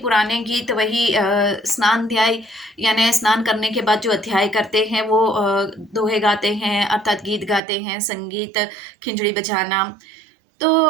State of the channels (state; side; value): drops out; left; at 7.6 s